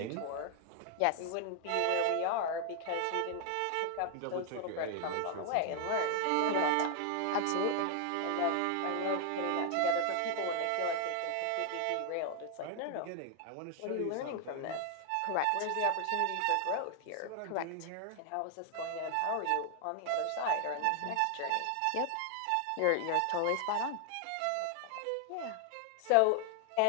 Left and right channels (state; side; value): different; both; correlation 0.00